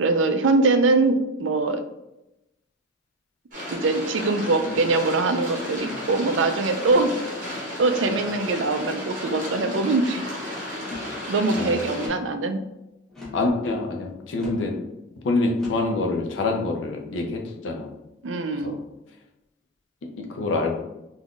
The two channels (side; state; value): both; normal; correlation 0.08